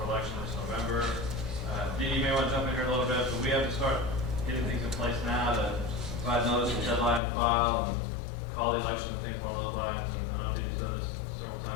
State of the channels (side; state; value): right; drops out; at 7.2 s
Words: election this November. Dee, you may want to jump in here a little bit, but we have to start getting things in place now to provide notice of deadline to file, and call the election, I think, along those lines, and I know Dee's done this several